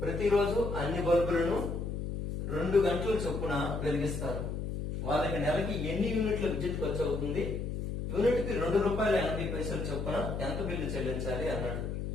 ప్రతిరోజు అన్ని బల్బులను 2 గంటల చొప్పున వెలిగిస్తారు. వాళ్ళకి నెలకి ఎన్ని యూనిట్ల విద్యుత్ ఖర్చు అవుతుంది, యూనిట్ కి ₹2.80 చొప్పున ఎంత బిల్లు చెల్లించాలి అన్నాడు.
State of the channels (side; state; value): left; noise; hum, 4 dB below the sound